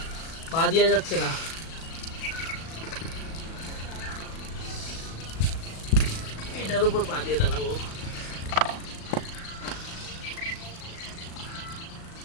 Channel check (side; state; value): right; late; 37 ms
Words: পা দেওয়া যাচ্ছে না। এটার উপর পা দিয়ে দাঁড়াবো।